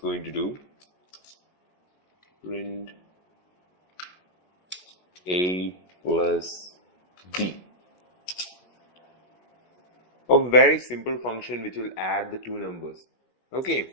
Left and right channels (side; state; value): right; late; 16 ms